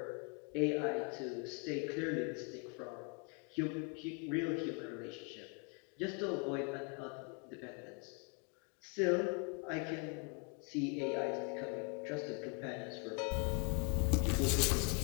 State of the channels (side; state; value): right; quieter; 34.9 dB